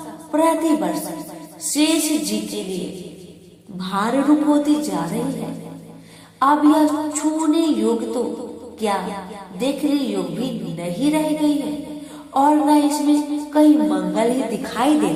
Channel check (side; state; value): both; identical; correlation 1.00